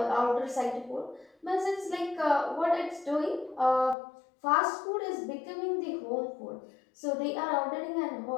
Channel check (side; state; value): right; drops out; at 4.0 s